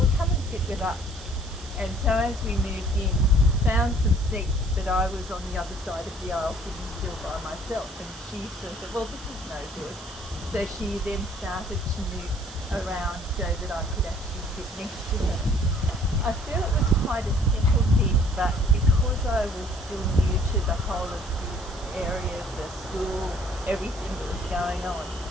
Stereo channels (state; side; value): noise; right; hiss, 18 dB below the sound